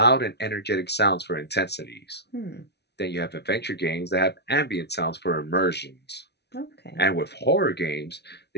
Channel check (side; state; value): right; late; 0.49 ms